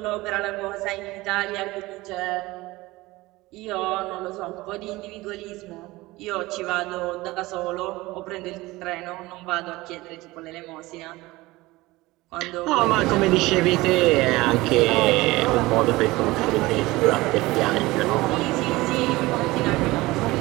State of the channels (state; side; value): quieter; left; 20.0 dB